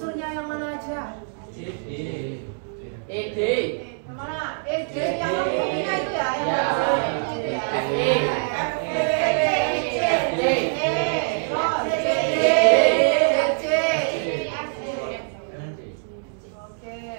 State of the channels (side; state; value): left; silent; 63 dB below the other